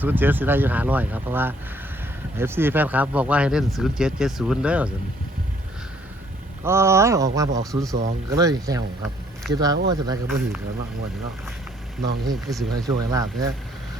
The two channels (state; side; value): normal; both; correlation 0.64